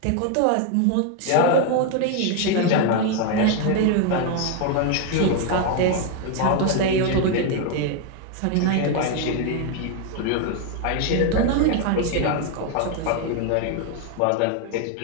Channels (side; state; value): both; different; correlation 0.01